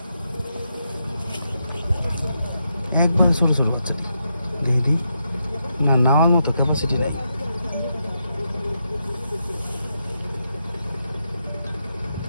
একবারে ছোটো ছোটো বাচ্চাটি, দেখি না নেওয়ার মতো ক্যাপাসিটি নেই।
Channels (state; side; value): inverted; both; correlation -0.83